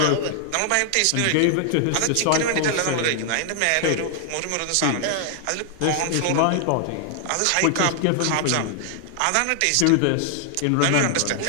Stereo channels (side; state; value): both; different; correlation 0.00